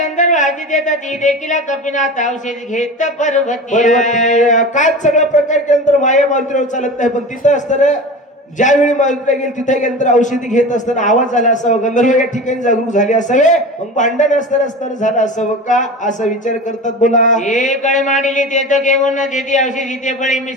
आधी देतात ती देखील कपिनाथ औषधी घेत पर्वती काय सगळा प्रकार केल्यानंतर माया मारुतीवर चालत नाही पण तिथं असताना ज्यावेळी मारुतीला गेली तिथे गेल्यानंतर औषधी घेत असताना आवाज झाला असावं गंधर्व या ठिकाणी जागरूक झाले असावे मग भांडण असताना झालं असावं का असा विचार करतात. बोला कळे मांडली ते तर घेऊन देती औषधी ते बळी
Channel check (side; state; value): both; normal; correlation 0.31